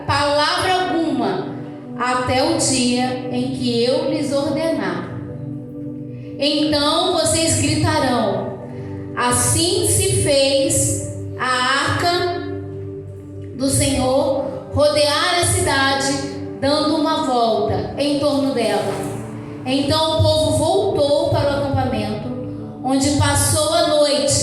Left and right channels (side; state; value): both; identical; correlation 1.00